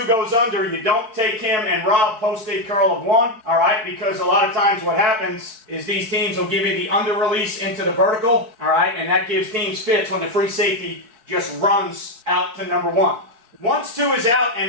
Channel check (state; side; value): late; left; 4.5 ms